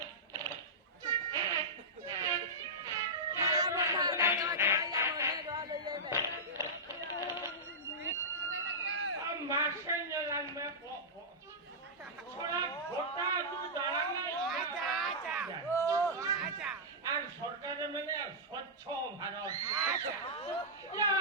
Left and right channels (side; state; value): both; normal; correlation -0.12